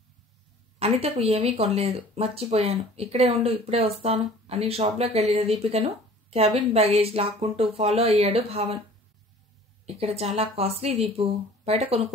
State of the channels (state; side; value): normal; both; correlation 0.48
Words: అనితకు ఏమీ కొనలేదు, మర్చిపోయాను, ఇక్కడే ఉండు, ఇప్పుడే వస్తాను అని షాప్లోకి వెళ్ళిన దీపికను క్యాబిన్ బ్యాగేజ్ లాక్కుంటూ ఫాలో అయ్యాడు భావన్. ఇక్కడ చాలా కాస్ట్లీ దీపు, బయట